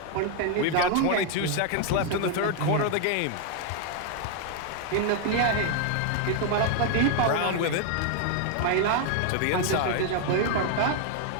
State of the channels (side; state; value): both; different; correlation 0.00